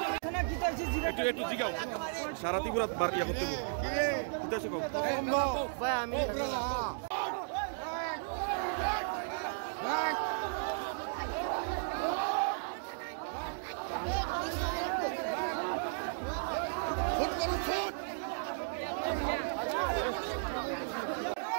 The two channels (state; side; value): silent; left; digital silence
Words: একটু জিগাও সারা ত্রিপুরা বার ইয়া করতে ভাই আমি